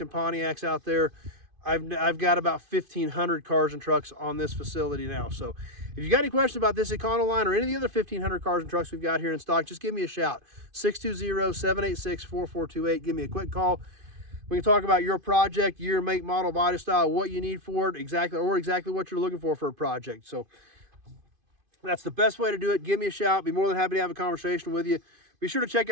and Pontiacs out there. I've got about 1,500 cars and trucks on this facility now. So if you got any questions about this Econoline or any of the other 1,500 cars and trucks we've got here in stock, just give me a shout. 620-786-4428. Give me a quick call. We can talk about your project, year, make, model, body style, what you need for it, exactly what you're looking for a project. So that's the best way to do it. Give me a shout. Be more than happy to have a conversation with you. Be sure to check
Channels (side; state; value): left; late; 2.5 ms